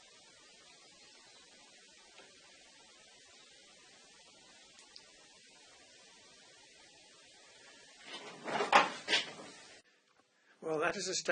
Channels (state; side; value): identical; both; correlation 1.00